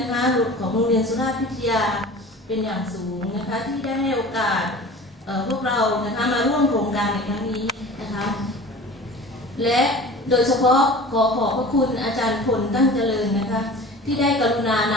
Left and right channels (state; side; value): normal; both; correlation 0.40